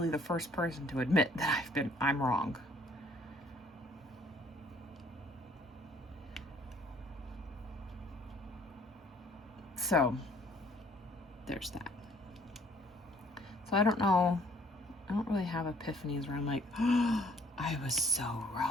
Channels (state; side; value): normal; both; correlation 0.60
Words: the first person to admit that I'm wrong. So, there's that. So I don't know, I don't really have epiphanies where I'm like, oh, I was so